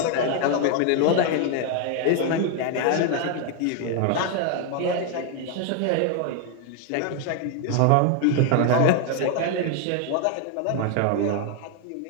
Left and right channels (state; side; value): different; both; correlation 0.01